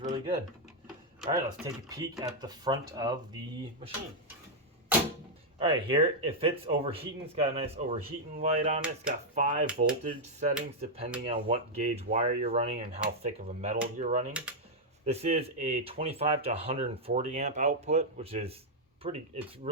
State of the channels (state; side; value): normal; both; correlation -0.02